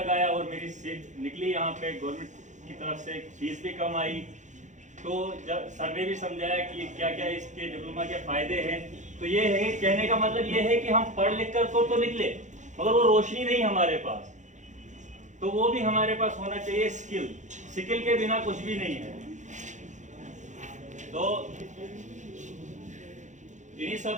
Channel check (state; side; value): late; left; 0.35 ms